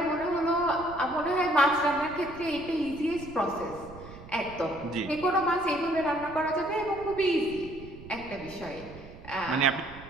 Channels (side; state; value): right; noise; rumble, 17 dB below the sound